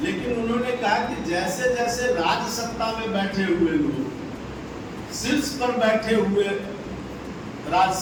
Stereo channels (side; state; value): both; identical; correlation 1.00